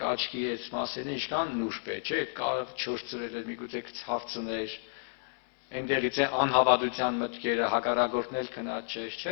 աչքի այս մասերն ինչքան նուրբ է, չէ՞, այդ կավը չորցրել էր միգուցե ցավ ծներ, այնտեղից է անհավատության մտքերը, հակառակորդն էլ քնած չէ,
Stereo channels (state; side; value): silent; right; 57 dB below the other